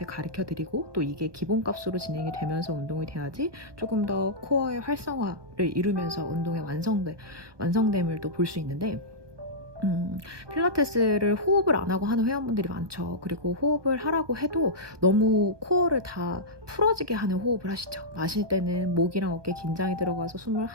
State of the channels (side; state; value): left; late; 1.2 ms